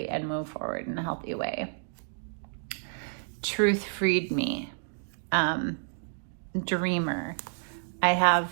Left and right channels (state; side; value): silent; left; digital silence